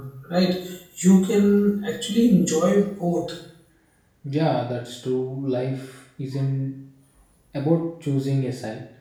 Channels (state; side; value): identical; both; correlation 1.00